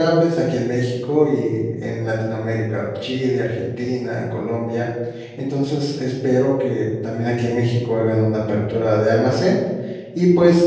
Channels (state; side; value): identical; both; correlation 1.00